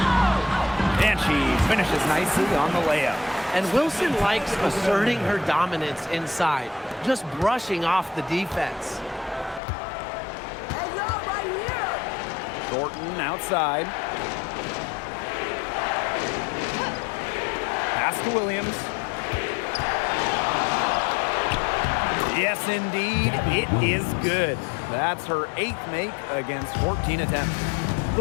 And she finishes nicely on the layup. And Wilson likes asserting her dominance inside, just brushing off the defense. Hey, yo, right here! Thornton outside. Pass to Williams. Yes, indeed, it is good. That's her 8th make against 14 attempts.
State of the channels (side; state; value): right; drops out; at 9.6 s